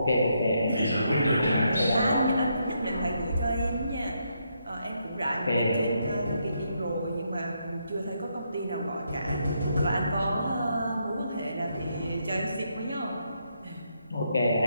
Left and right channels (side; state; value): both; inverted; correlation -0.78